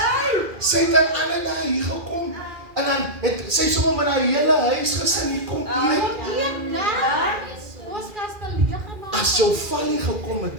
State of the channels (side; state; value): left; late; 2.4 ms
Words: Sy het aan alle dae hier gekom en dan het sy sommer met haar hele huisgesin hier kom eet. As jou valie gekom het